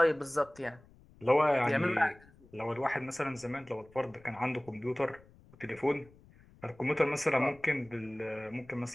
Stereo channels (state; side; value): noise; left; rumble, 26 dB below the sound